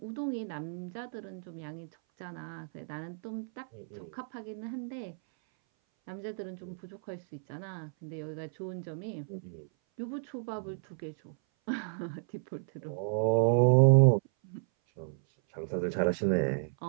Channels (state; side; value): silent; left; 56 dB below the other